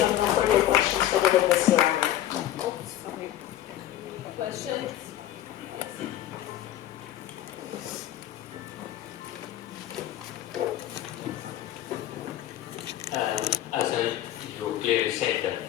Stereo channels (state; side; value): quieter; right; 12.9 dB